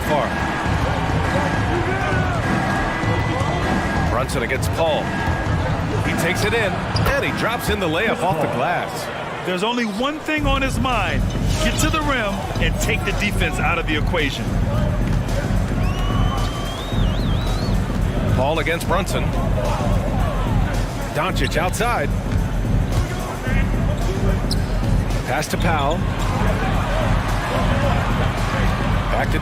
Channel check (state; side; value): identical; both; correlation 1.00